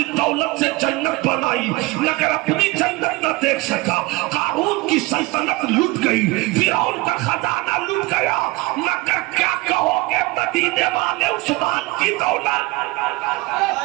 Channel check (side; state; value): left; quieter; 22.6 dB